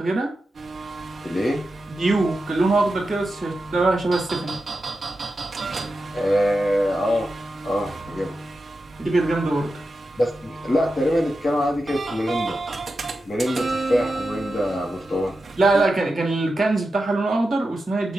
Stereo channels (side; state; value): both; normal; correlation 0.90